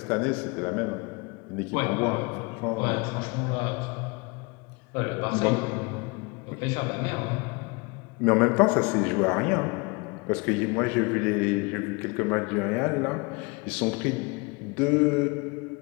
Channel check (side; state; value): right; quieter; 28.7 dB